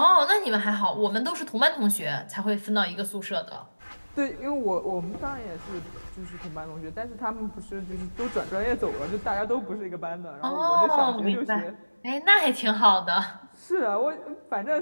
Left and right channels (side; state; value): both; inverted; correlation -1.00